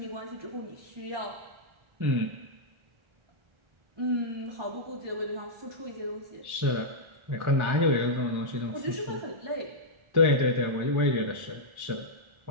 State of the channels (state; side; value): late; left; 1.4 ms